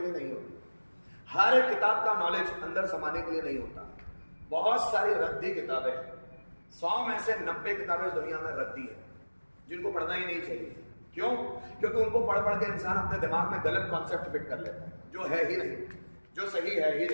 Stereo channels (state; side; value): inverted; both; correlation -1.00